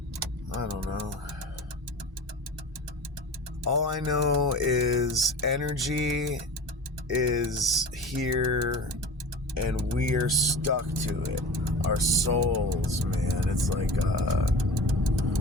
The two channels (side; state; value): both; normal; correlation 0.35